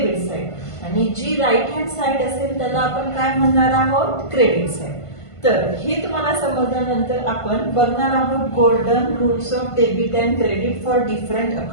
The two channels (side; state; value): right; late; 1.5 ms